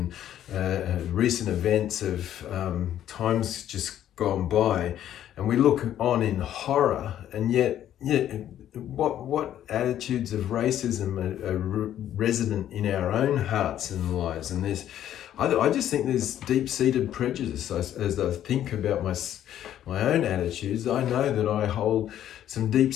recent events of times just gone by, and we look on in horror, and yet what attitudes of racism are resident in our own hearts and lives. And I just think there's deep-seated prejudice. As I think about my own attitudes, I know that I hold some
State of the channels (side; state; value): right; quieter; 11.3 dB